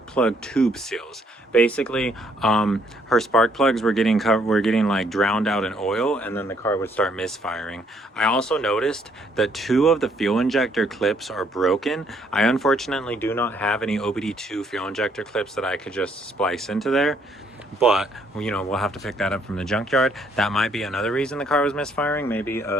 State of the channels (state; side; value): normal; both; correlation 0.68